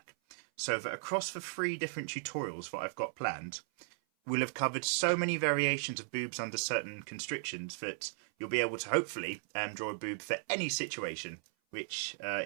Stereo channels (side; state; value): left; silent; 54 dB below the other